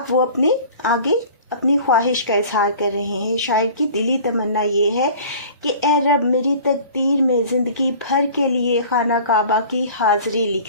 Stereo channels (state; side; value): inverted; both; correlation -0.45